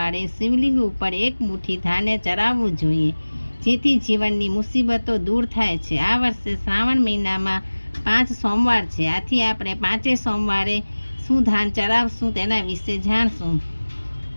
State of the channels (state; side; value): inverted; both; correlation -1.00